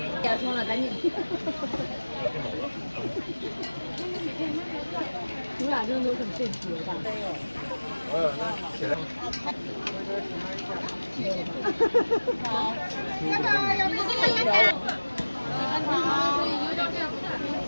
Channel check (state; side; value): inverted; both; correlation -1.00